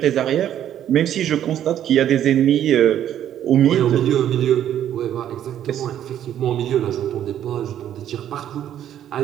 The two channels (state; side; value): quieter; left; 10.7 dB